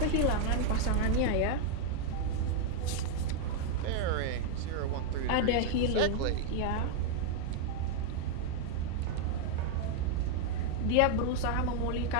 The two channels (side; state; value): both; different; correlation 0.00